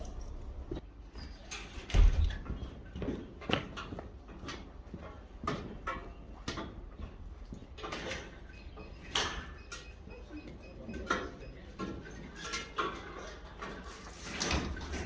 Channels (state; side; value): identical; both; correlation 1.00